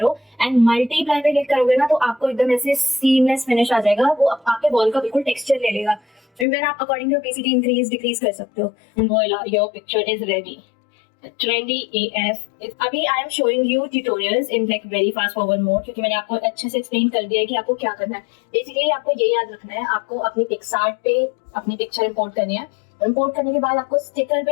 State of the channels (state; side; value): drops out; right; at 6.5 s